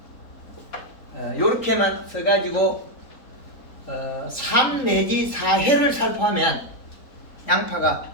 요렇게만 써가지고 3 내지 4회를 살포하면 양파가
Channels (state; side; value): late; right; 3.8 ms